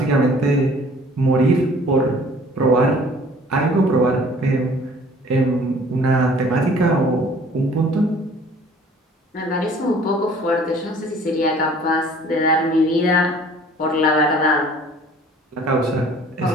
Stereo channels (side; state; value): both; normal; correlation 0.52